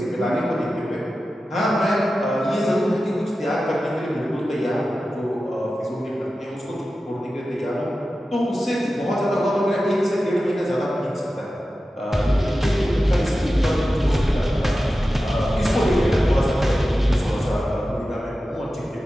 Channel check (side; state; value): both; normal; correlation 0.93